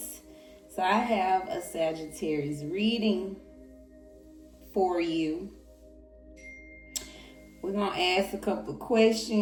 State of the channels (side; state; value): both; identical; correlation 1.00